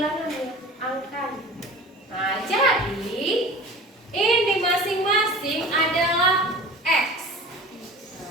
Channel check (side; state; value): both; normal; correlation 0.38